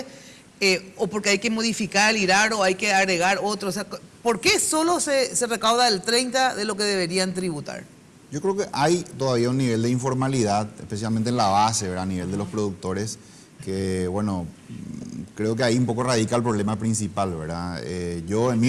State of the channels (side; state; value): both; identical; correlation 1.00